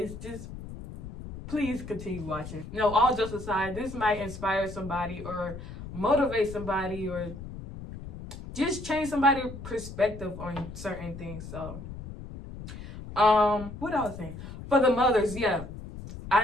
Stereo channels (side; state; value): left; noise; rumble, 11 dB below the sound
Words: Just please continue watching. No, all jokes aside, this might inspire somebody or motivate somebody or just change somebody's perspective on certain things. So, what I was saying, for the mothers, yeah,